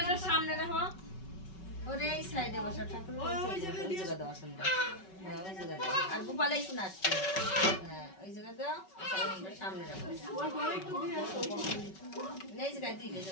সামনে রাখো ওরে এই সাইডে বসা ঠাকুর আর গোপালে শুনে আসছে হ্যাঁ ওই জায়গা দাও সামনে রাখো এই জায়গায় দিকে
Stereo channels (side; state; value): right; late; 5.3 ms